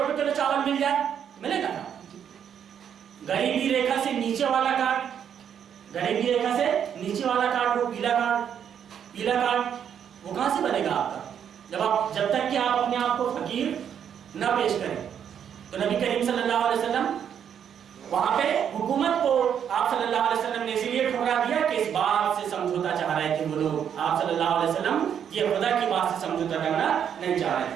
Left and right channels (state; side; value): quieter; left; 8.6 dB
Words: کلو چاول مل جائے، ملے گا؟ غریبی ریکھا سے نیچے والا کارڈ، وہ پیلا کارڈ وہ کہاں سے بنے گا آپ کا؟ جب تک کہ آپ اپنے آپ کو فقیر نہ پیش کریں۔ تو نبی کریم صلی اللہ علیہ وسلم وہاں پہ حکومت کو آپ صلی اللہ علیہ وسلم نے اسی لیے ٹھکرا دیا کہ اس بات سے سمجھوتا چاہ رہے تھے وہ لوگ، آپ صلی اللہ علیہ وسلم یہ خدا کی بات سے سمجھوتا کرنا نہیں چاہ رہے تھے۔